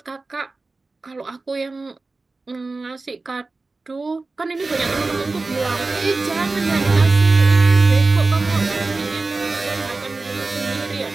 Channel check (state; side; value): quieter; left; 3.6 dB